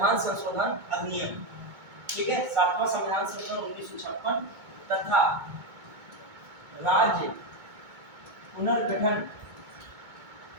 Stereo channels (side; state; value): left; late; 2.2 ms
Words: संशोधन अधिनियम, ठीक है, 7वां संविधान संशोधन 1956 तथा राज्य पुनर्गठन